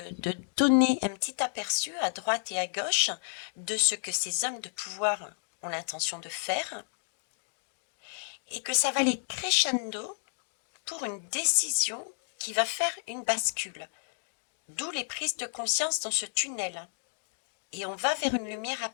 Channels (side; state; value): right; silent; digital silence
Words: donner un petit aperçu à droite et à gauche de ce que ces hommes de pouvoir ont l'intention de faire, et que ça va aller crescendo pour une décision qui va faire une bascule. D'où les prises de conscience dans ce tunnel. Et on va vers une lumière